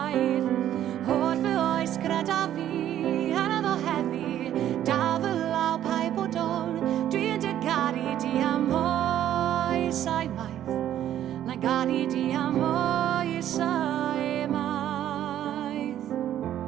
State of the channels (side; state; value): left; quieter; 11.5 dB